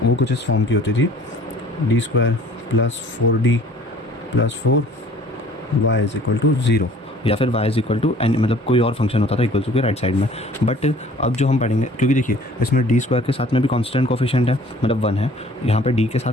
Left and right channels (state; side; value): normal; both; correlation 0.52